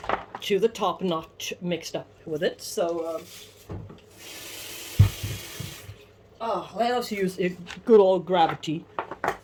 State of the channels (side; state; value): both; identical; correlation 1.00